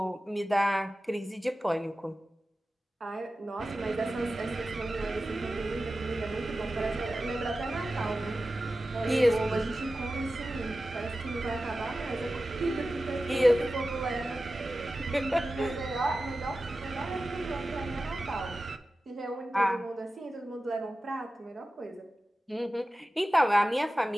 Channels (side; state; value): both; normal; correlation 0.94